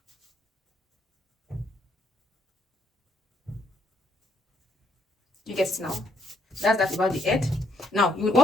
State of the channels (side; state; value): both; normal; correlation 0.72